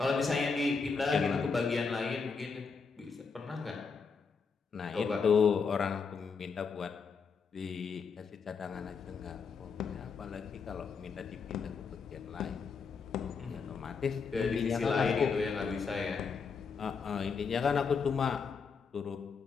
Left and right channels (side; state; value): right; quieter; 5.4 dB